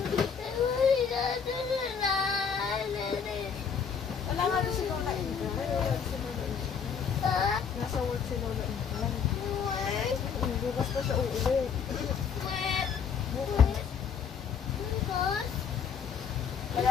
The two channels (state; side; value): quieter; right; 6.7 dB